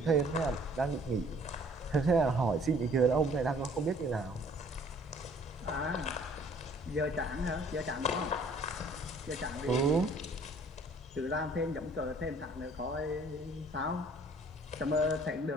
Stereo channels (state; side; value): normal; both; correlation 0.56